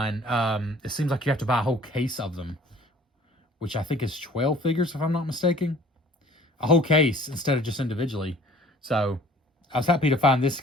it seems like you have to buy a whole case of them, which I think is 12 figures, if I'm not mistaken. A whole case instead of just individually. So I was happy to find this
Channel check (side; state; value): both; normal; correlation 0.52